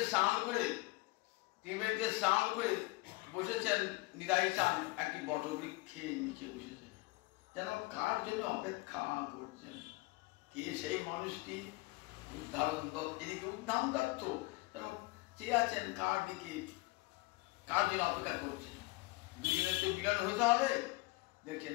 স্নান করে বসেছেন নিতাই চাঁদ একটি বটবৃক্ষের নিচে বসেছেন, যেন কার জন্য অপেক্ষা করছেন। কে সেই মানুষটি? উদ্ধারণ দত্ত, এদিকে উদ্ধান দত্ত চেয়ে আছেন কার দিকে, কার জন্য অপেক্ষা করছেন। দুজনের তো মিলন হতে হবে।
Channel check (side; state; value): right; quieter; 22.7 dB